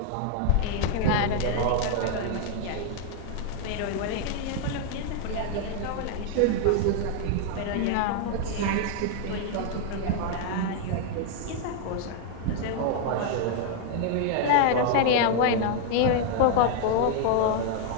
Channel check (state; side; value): different; both; correlation 0.00